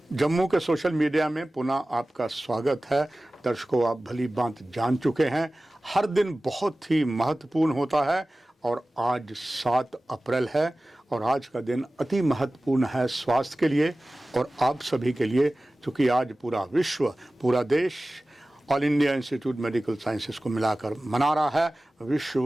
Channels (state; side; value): normal; both; correlation 0.97